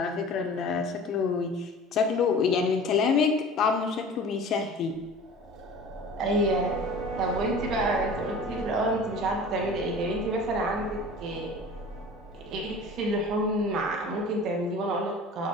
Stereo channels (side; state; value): both; normal; correlation 0.41